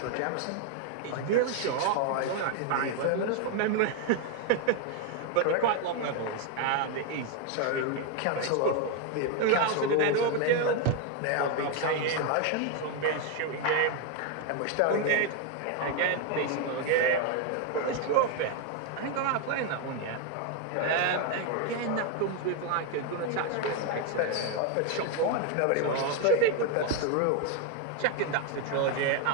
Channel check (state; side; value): different; both; correlation 0.01